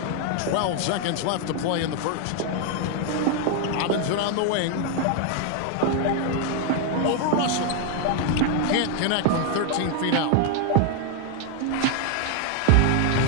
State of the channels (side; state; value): both; different; correlation 0.00